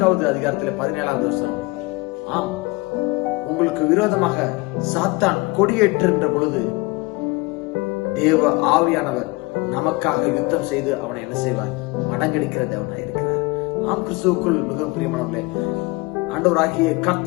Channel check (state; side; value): quieter; right; 24.6 dB